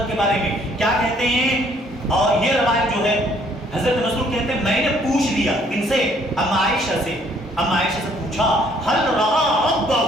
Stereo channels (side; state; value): both; normal; correlation 0.63